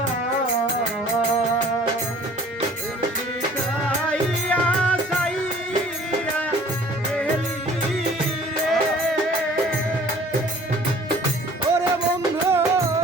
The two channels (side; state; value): both; normal; correlation 0.51